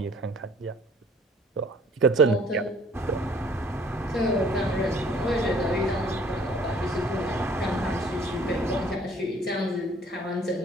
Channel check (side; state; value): both; normal; correlation 0.56